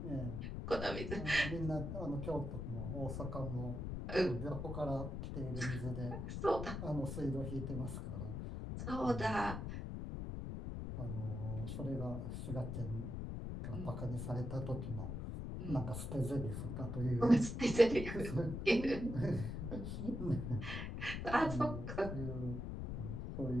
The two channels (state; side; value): noise; left; rumble, 4 dB below the sound